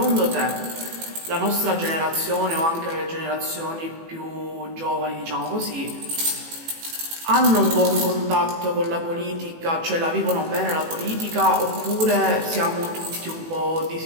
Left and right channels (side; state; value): left; late; 18 ms